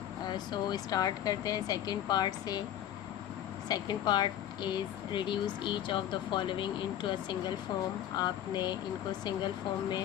सो स्टार्ट करते हैं सेकंड पार्ट से। Second part is reduce each of the following into a single form. आपने इनको सिंगल फॉर्म में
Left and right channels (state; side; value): quieter; right; 11.3 dB